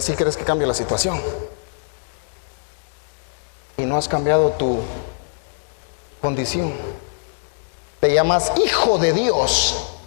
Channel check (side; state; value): right; silent; digital silence